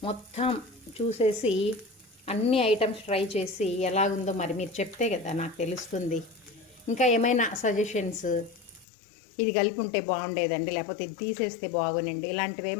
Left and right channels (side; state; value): right; drops out; at 8.8 s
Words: మొత్తం చూసేసి అన్ని ఐటమ్స్ ట్రై చేసి ఎలాగుందో మరి మీరు చెప్తే కదా నాకు తెలుస్తుంది. ఇంకా ఏమైనా సజెషన్స్, ఇది కలిపి ఉంటే బాగుండేదండి, లేకపోతే ఇది తీసేస్తే బాగుండండి, ఇలాంటివి